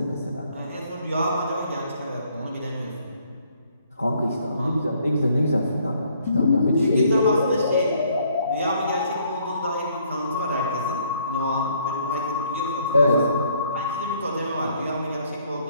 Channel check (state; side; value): inverted; both; correlation -0.65